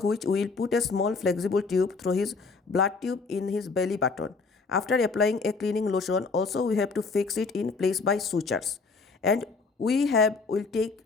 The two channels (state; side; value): quieter; right; 4.3 dB